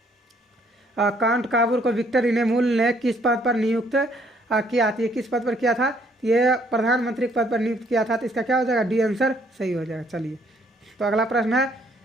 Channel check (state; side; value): normal; both; correlation 0.66